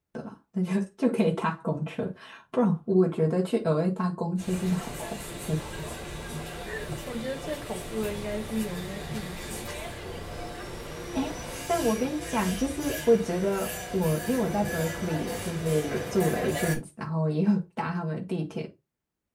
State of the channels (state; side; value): identical; both; correlation 1.00